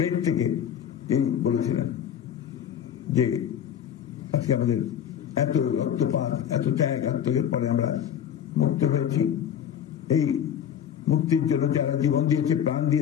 থেকে তিনি বলেছিলেন যে আজকে আমাদের এত রক্তপাত, এত ত্যাগ আত্মত্যাগের পরে আমরা মুক্ত হয়েছি। এই মুক্তির জন্য যারা জীবন দিয়েছে, প্রাণ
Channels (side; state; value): right; quieter; 9.3 dB